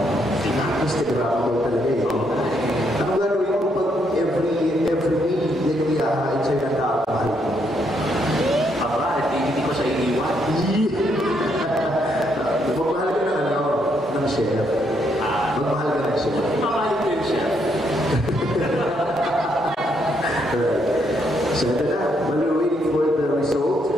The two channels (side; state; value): both; normal; correlation 0.75